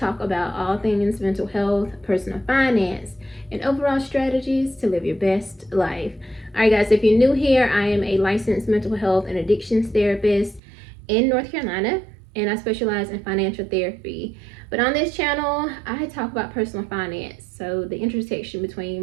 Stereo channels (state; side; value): drops out; left; at 10.6 s